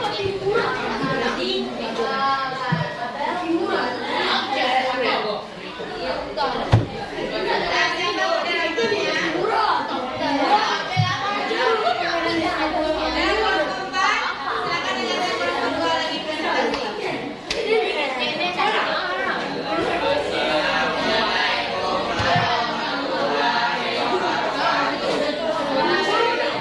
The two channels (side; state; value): both; identical; correlation 1.00